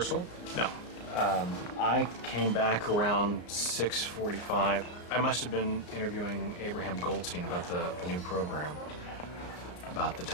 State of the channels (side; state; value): right; late; 34 ms